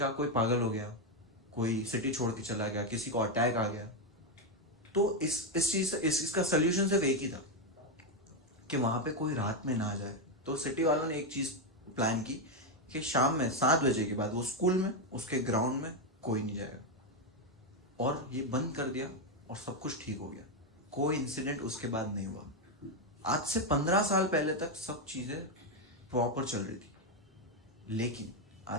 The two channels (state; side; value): normal; both; correlation 0.05